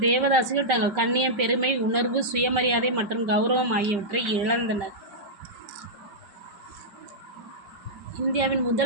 தேவதாசிகள் தங்கள் கண்ணியம், பெருமை உணர்வு, சுயமரியாதை மற்றும் கௌரவம் ஆகியவற்றை இழந்தனர். இந்தியாவின்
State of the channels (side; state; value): left; late; 5.3 ms